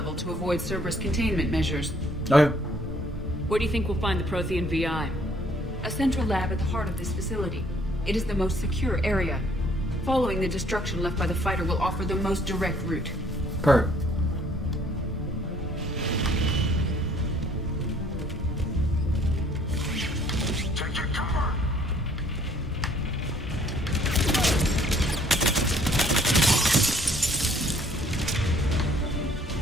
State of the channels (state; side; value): normal; both; correlation 0.61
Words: to avoid Cerberus containment measures. Okay. Where do you think we'll find the Prothean VI? A central lab at the heart of this facility. It is the most secure area. Following the destruction left by the fighter will offer the most direct route. Perfect.